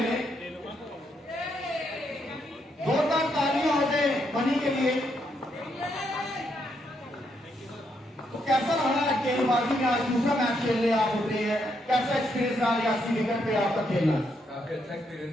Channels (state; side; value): normal; both; correlation 0.77